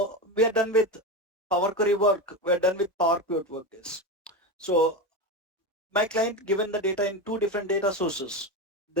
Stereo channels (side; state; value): both; normal; correlation 0.19